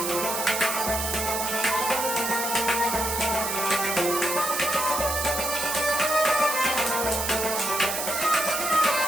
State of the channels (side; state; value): right; noise; hiss, 3 dB below the sound